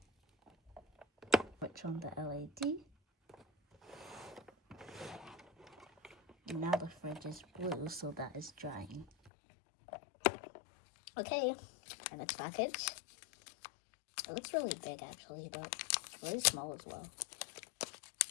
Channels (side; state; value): right; drops out; at 9.3 s